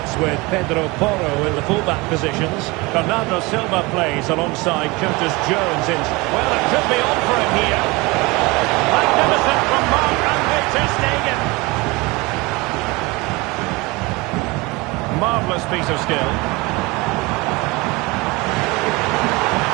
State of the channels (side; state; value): left; quieter; 24.1 dB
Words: with Pedro Porro in the fullback positions. Bernardo Silva plays alongside Curtis Jones in. Well, it could be on for him here. Magnificent from Marc-Andre ter Stegen. Marvellous piece of skill.